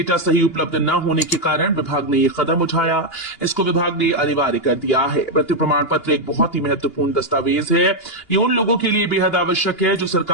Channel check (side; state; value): right; late; 2.8 ms